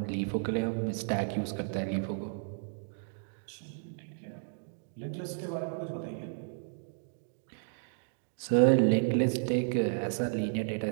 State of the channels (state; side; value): silent; left; digital silence